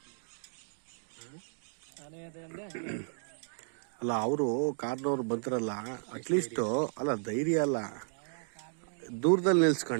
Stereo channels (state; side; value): silent; left; digital silence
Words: ಅಲ್ಲ ಅವರು ಕಾರ್ನವ್ರು ಬಂತಿರಲ್ಲ ಅಟ್ಲೀಸ್ಟ್ ಅಲ್ಲ ಧೈರ್ಯ ಅಲ್ಲ ದೂರದಲ್ಲಿ